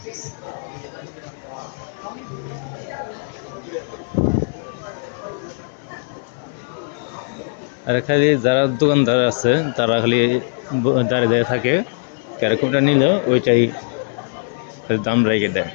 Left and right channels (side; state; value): right; silent; digital silence